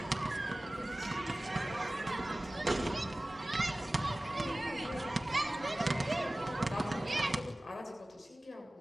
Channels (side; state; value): both; normal; correlation 0.98